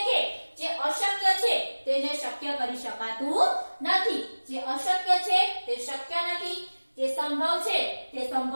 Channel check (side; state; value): both; inverted; correlation -1.00